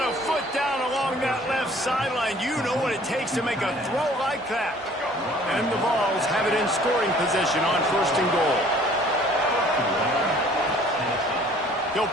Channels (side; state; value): both; normal; correlation 0.54